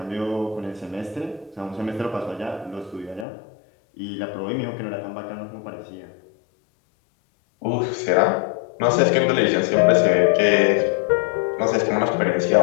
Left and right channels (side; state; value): right; drops out; at 3.2 s